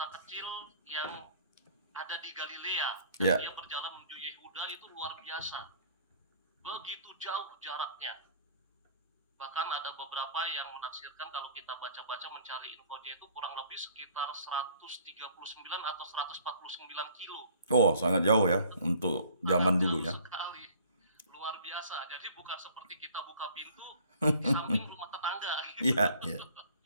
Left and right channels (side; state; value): both; inverted; correlation -0.53